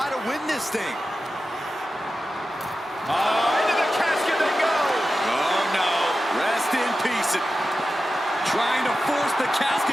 to win this thing. Into the casket they go. Oh no, rest in peace. Trying to force the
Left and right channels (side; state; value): both; normal; correlation 0.93